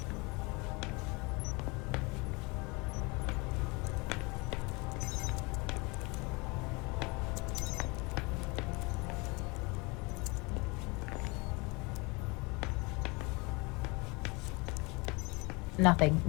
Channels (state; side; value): quieter; right; 27.3 dB